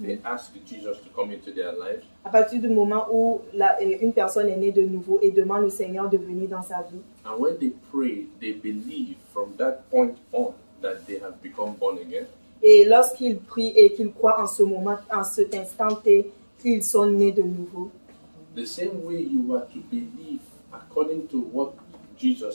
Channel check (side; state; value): both; inverted; correlation -1.00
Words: they ask Jesus to come into their lives. à partir du moment où une personne est née de nouveau et demande au Seigneur de venir dans sa vie. And when they pray, they believe from that point on that they have become born again. Et lorsqu'ils prient et qu'ils croient en ce moment, en cet instant T, qu'ils sont nés de nouveau. The same way you are to believe according to what